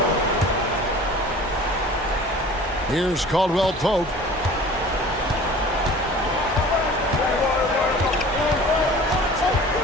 Here's Caldwell Pope.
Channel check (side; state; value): both; normal; correlation 0.44